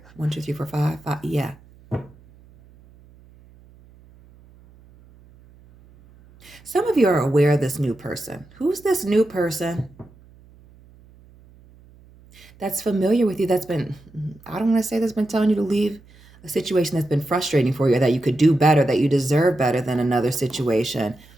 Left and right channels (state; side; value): noise; right; hum, 26 dB below the sound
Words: 1, 2, 3, 4, 5. Yeah. Some of you are aware of this new person. Who's this new person that's familiar with you, that's been, I don't want to say that's been telling you to leave a situation that's been frustrating for you, or that you could do better, that you deserve better than another situation.